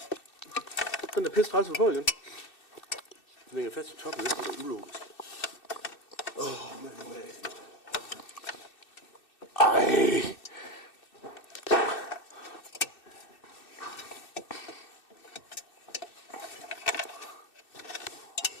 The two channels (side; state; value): right; late; 2.6 ms